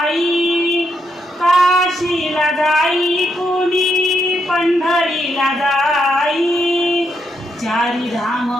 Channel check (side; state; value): both; normal; correlation 0.79